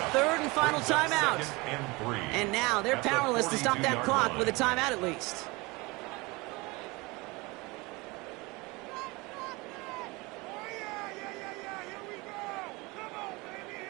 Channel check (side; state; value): left; quieter; 24.5 dB